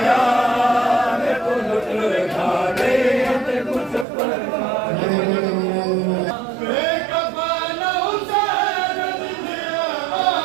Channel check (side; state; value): left; drops out; at 4.0 s